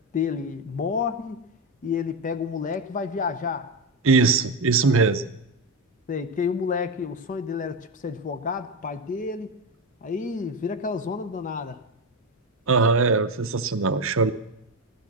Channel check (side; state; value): both; normal; correlation 0.13